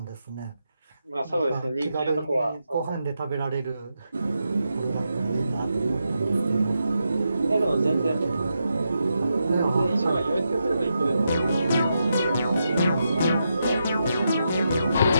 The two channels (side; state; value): both; inverted; correlation -0.85